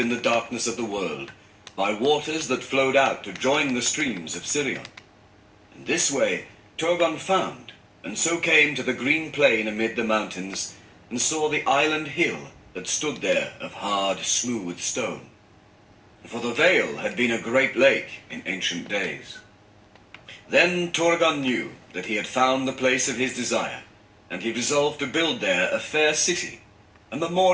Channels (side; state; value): both; identical; correlation 1.00